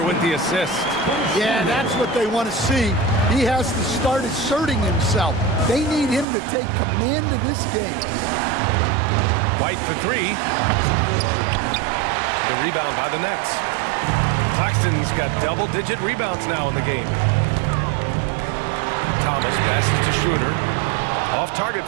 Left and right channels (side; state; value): left; drops out; at 6.2 s